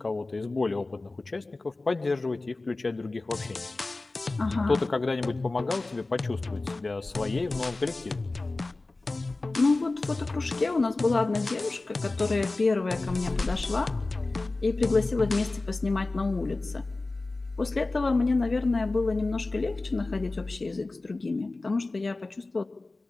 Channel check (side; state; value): right; quieter; 3.2 dB